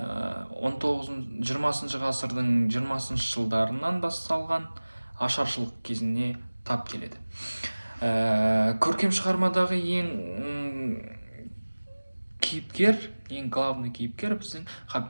ғасырдың 20 жылдарынан басталған ашаршылық кезіне тап келеді. Көркем шығармадағы ең главный кейіпкер біздің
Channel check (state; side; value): inverted; both; correlation -1.00